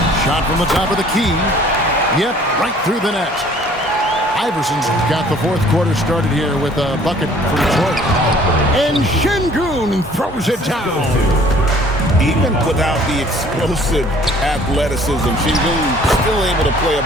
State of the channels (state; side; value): normal; both; correlation 0.55